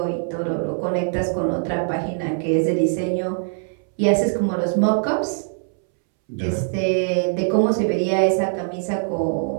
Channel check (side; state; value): left; silent; 64 dB below the other